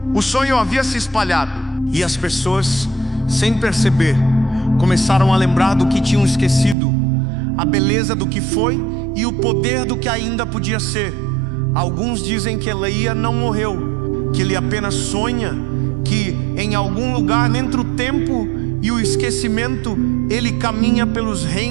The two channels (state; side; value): drops out; left; at 6.8 s